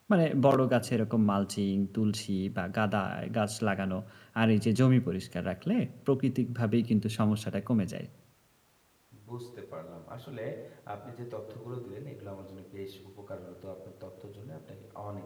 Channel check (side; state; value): both; identical; correlation 1.00